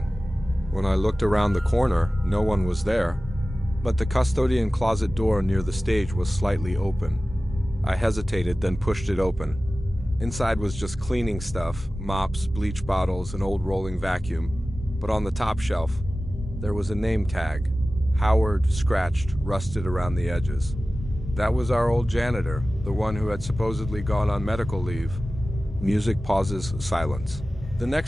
When I looked around the corner, no one was there, but the custodian closet door near the stage was slightly open. I hesitated, then pushed it open. Inside was just cleaning stuff, mops, bleach bottles, an old rolling vacuum. But on the top shelf, there was a name tag. Howard, scratched, rusted around the edges. That was our old janitor, the one who had supposedly gone on medical leave. Music pauses, silence. The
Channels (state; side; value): normal; both; correlation 0.96